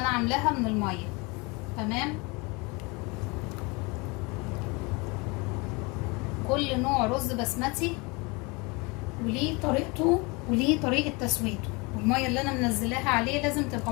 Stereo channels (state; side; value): quieter; right; 27.5 dB